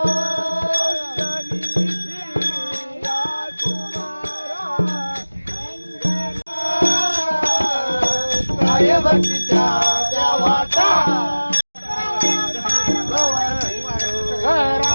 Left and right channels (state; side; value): inverted; both; correlation -1.00